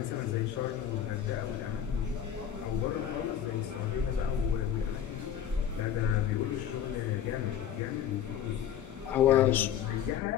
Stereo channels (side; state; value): right; quieter; 9.6 dB